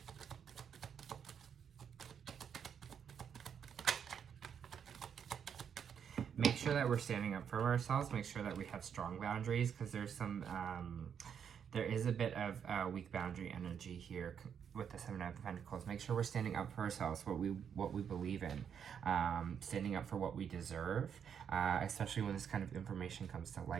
Make sure that we're standing up for ourselves. Make sure that we have strong boundaries, because there's some, there is a bit of weak boundary energy here with the Seven of Pentacles. Make sure we're standing up for ourselves, what we believe in, standing up for what we deserve, especially when this kind of information comes to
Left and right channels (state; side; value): quieter; left; 7.8 dB